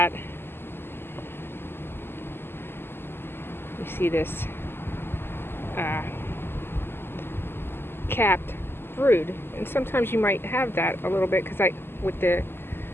you see this capped brood, and sometimes you might have that a little bit, because with the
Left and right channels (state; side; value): late; right; 0.11 ms